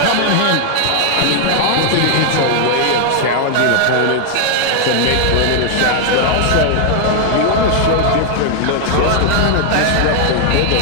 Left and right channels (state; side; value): different; both; correlation 0.00